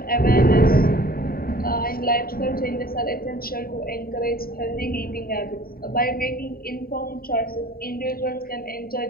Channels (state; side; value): late; right; 0.43 ms